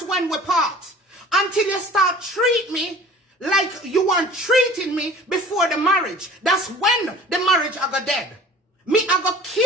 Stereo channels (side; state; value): both; normal; correlation 0.44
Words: when we part. Until you start treat me like you weren't treating me before the marriage. That's when the marriage I got dead. Me, I go